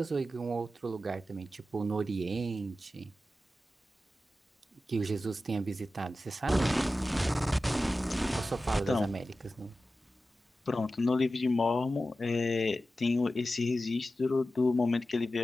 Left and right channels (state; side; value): normal; both; correlation 0.93